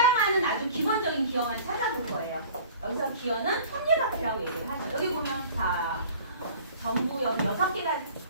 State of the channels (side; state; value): both; inverted; correlation -0.46